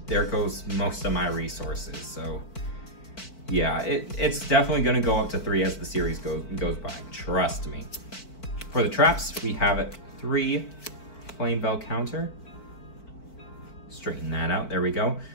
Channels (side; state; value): right; late; 4.5 ms